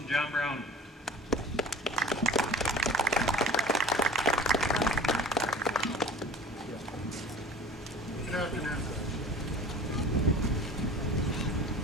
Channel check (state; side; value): normal; both; correlation 0.42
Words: John Brown. Good afternoon.